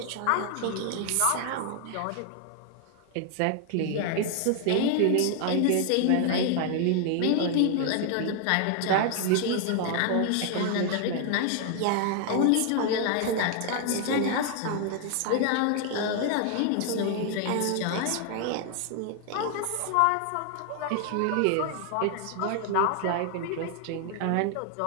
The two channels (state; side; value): different; both; correlation 0.00